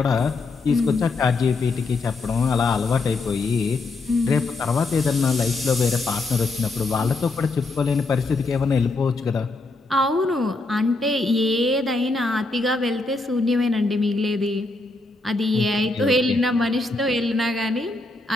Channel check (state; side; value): quieter; right; 3.3 dB